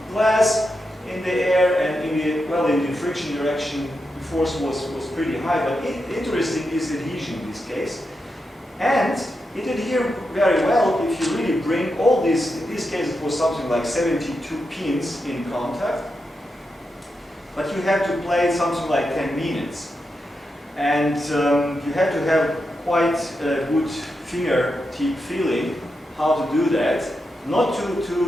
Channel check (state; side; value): normal; both; correlation 0.87